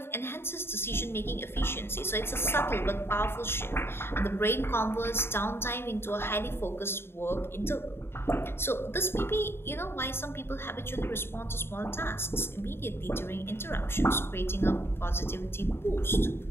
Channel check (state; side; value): late; right; 0.11 ms